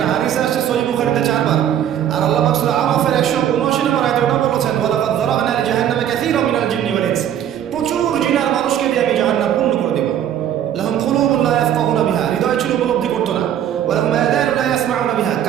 হাদিসে আসছে সহিহ বুখারীতে 4 বার। আর আল্লাহ পাক সূরা আরাফের 179 নম্বর আয়াতে ওটা বলেছেন, ওয়ালাকাদ যারা'না লিজাহান্নামা কাসীরাম মিনাল জিন্নি ওয়াল ইনস। প্রচুর জিনার মানুষকে দিয়ে আমি জাহান্নাম পূর্ণ করে দেব। লাহুম কুলুবুন লা ইয়াফকাহুনা বিহা, হৃদয় ছিল উপলব্ধি করতো না। ওয়া লাহুম আযানুন লা ইয়াসমাউনা বিহা,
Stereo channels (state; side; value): quieter; left; 10.3 dB